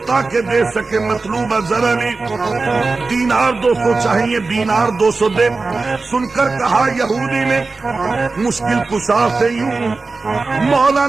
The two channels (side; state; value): left; quieter; 3.8 dB